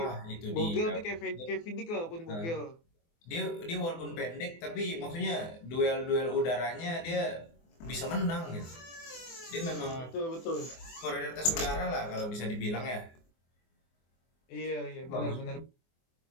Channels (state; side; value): late; right; 24 ms